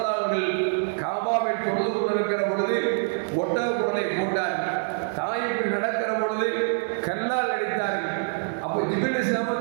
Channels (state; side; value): silent; left; digital silence